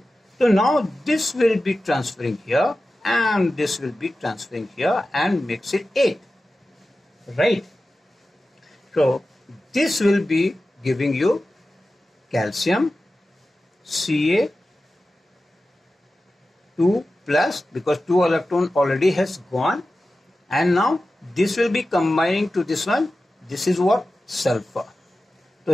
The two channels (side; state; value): both; normal; correlation 0.94